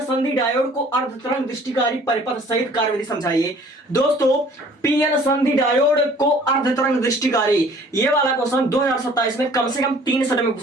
संधि डायोड को अर्धतरंग दृष्टिकारी परिपथ सहित कार्यविधि समझाइए। दोस्तों पीएन संधि डायोड को अर्धतरंग दृष्टिकारी, ये वाला क्वेश्चन 2027 में कम से कम 3 सेट में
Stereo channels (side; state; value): both; normal; correlation 0.53